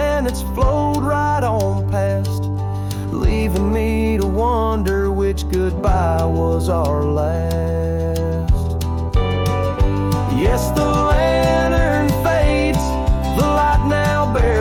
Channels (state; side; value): identical; both; correlation 1.00